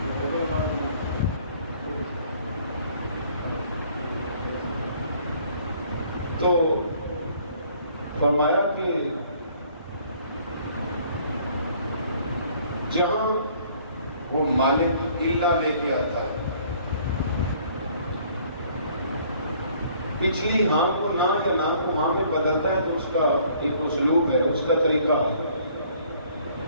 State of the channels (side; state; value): both; inverted; correlation -0.59